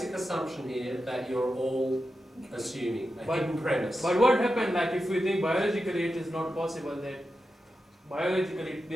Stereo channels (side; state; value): both; normal; correlation 0.90